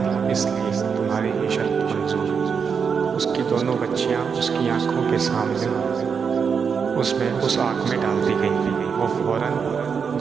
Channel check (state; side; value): quieter; left; 6.2 dB